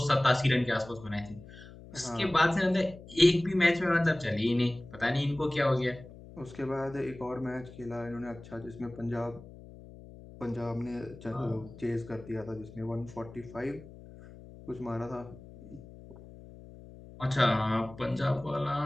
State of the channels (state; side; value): noise; left; hum, 18 dB below the sound